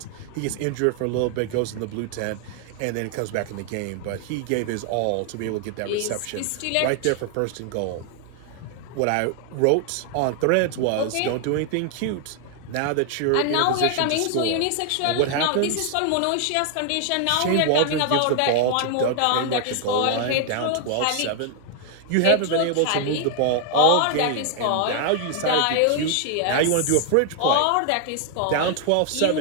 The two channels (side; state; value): both; different; correlation 0.00